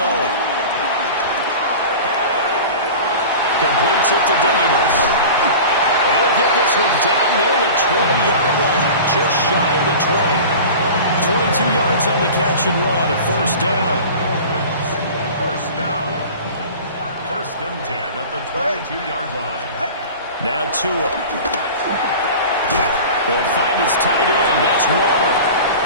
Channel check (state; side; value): inverted; both; correlation -0.36